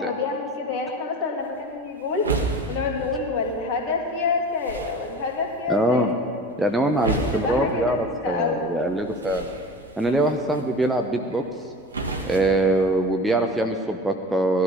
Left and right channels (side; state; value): both; normal; correlation 0.35